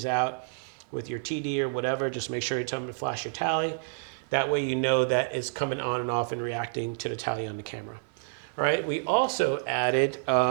out with your TD or whatever, just make sure you tell them to flash your tally. That way you know that it's coming on and off and reacting to the tally on the camera. All right, we also added,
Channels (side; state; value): left; silent; digital silence